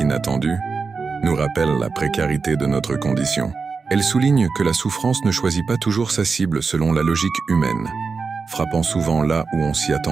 nous rappellent la précarité de notre condition. Elles soulignent que la souffrance ne choisit pas toujours sa cible selon la logique humaine, frappant souvent là où on s'y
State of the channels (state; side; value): quieter; left; 4.8 dB